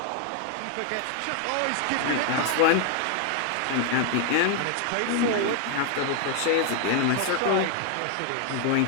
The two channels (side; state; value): both; different; correlation 0.00